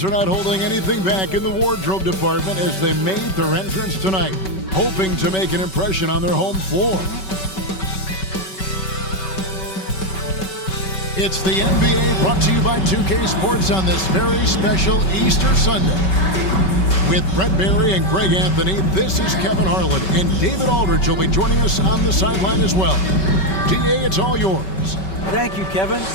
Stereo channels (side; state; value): right; late; 5.3 ms